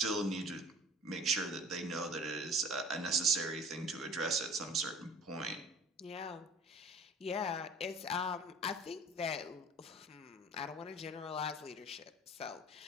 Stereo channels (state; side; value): normal; both; correlation 0.46